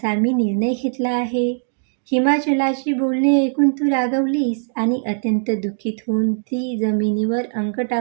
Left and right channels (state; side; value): silent; left; digital silence